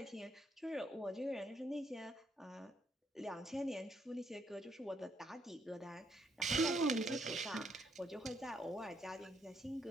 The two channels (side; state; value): both; normal; correlation 0.74